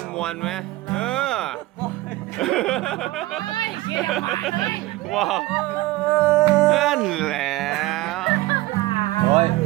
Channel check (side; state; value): left; quieter; 18.6 dB